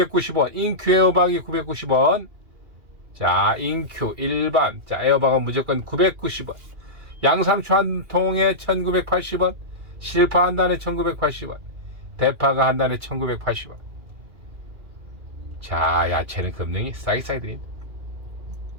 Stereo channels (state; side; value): late; left; 2.4 ms